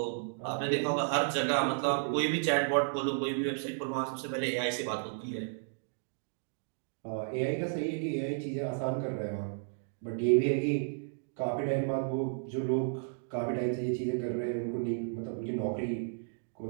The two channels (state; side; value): silent; left; digital silence